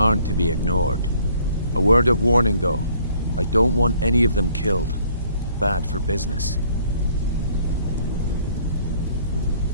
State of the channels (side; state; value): both; inverted; correlation -0.61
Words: to be ignored. A word of warning, though. I don't want any of them killed. Bad for business.